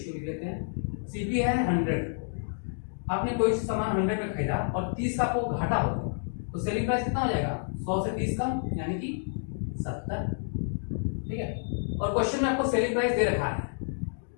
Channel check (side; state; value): right; silent; digital silence